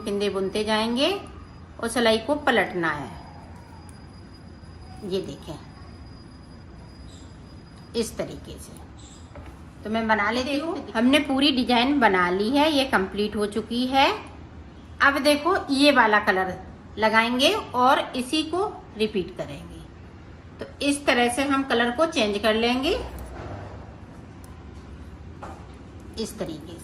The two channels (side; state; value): both; identical; correlation 1.00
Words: फिंदे बुनते जाएंगे और सिलाई को पलटना है। ये देखें इस तरीके से। तो मैं बना लेती हूँ। हमने पूरी डिजाइन बना ली है, ये कंप्लीट हो चुकी है। अब देखो ये वाला कलर लगाएंगे और इसी को रिपीट करेंगे। तो इस तरह से हम कलर को चेंज कर लेंगे, इस तरीके